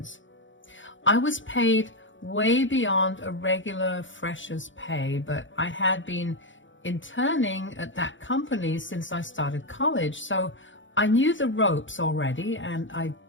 I was paid way beyond a regular fresher's pay, but I had been interning at that company since I started college, so I knew the ropes already and I'd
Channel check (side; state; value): right; late; 0.55 ms